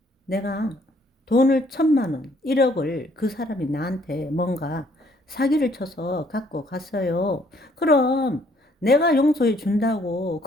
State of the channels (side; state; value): both; normal; correlation 0.65